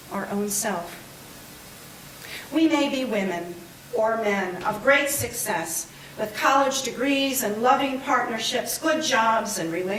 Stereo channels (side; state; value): both; identical; correlation 1.00